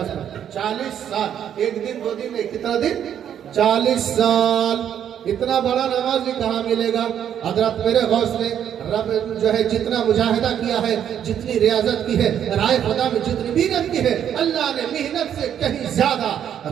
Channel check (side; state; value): left; quieter; 9.5 dB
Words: पढ़ते। 40 साल, एक दिन 2 दिन नहीं, कितना दिन? 40 साल इतना बड़ा नमाज भी कहाँ मिलेगा। हजरत मेरे गौस ने रब जो है जितना मुजाहिदा किया है, जितनी रियाजत की है, राय खुदा में जितनी मेहनत की है, अल्लाह ने मेहनत से कहीं ज्यादा